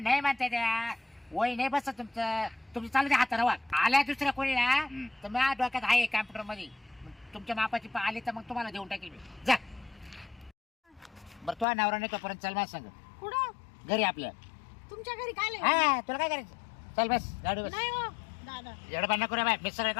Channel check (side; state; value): right; drops out; at 11.7 s